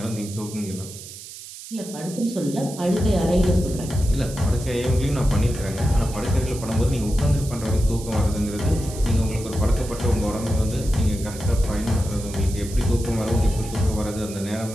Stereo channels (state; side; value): noise; right; hiss, 14 dB below the sound